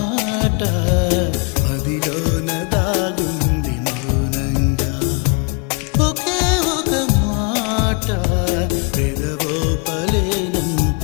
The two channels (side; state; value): right; quieter; 34.8 dB